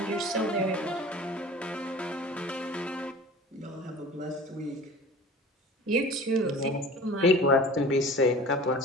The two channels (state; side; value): normal; both; correlation 0.41